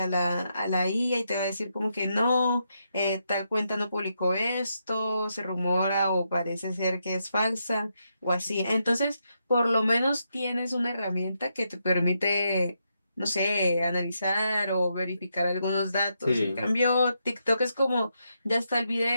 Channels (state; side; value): inverted; both; correlation -0.82